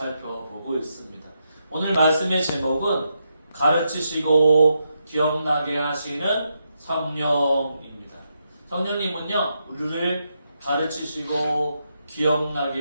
있습니다. 오늘 말씀의 제목은 가르치시고 기억나게 하시는 성령입니다. 성령님은요, 우리를 가르치시고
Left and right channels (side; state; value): both; inverted; correlation -0.82